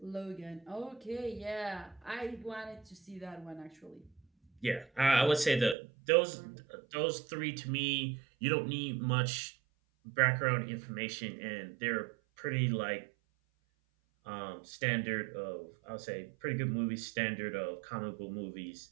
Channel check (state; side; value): drops out; left; at 5.8 s